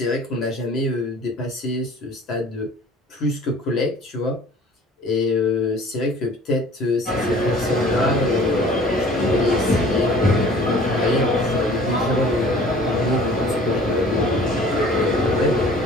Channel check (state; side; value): normal; both; correlation 0.49